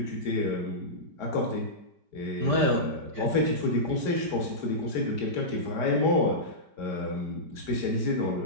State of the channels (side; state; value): left; late; 5.1 ms